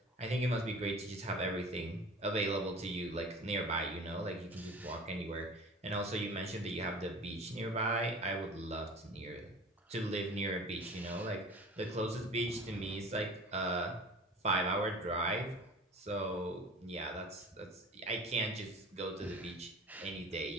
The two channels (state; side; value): normal; both; correlation 0.40